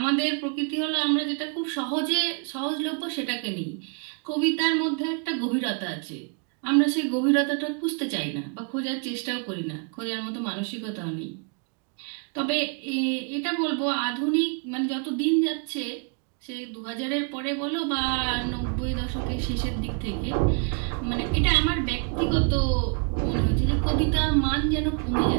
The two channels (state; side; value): quieter; left; 38.8 dB